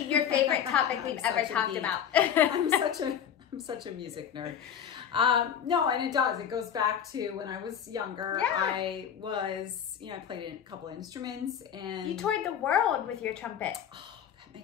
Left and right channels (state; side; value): quieter; right; 8.7 dB